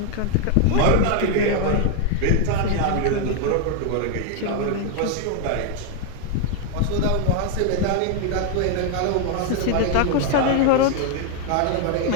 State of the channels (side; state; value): both; different; correlation 0.01